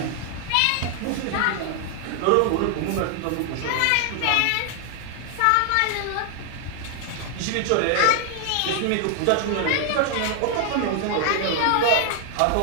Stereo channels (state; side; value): different; both; correlation 0.00